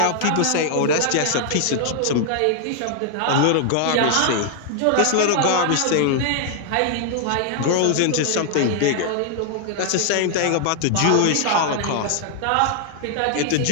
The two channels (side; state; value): both; different; correlation 0.00